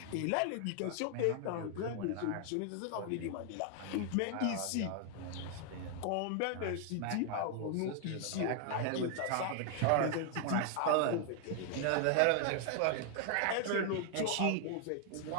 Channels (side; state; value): both; different; correlation 0.00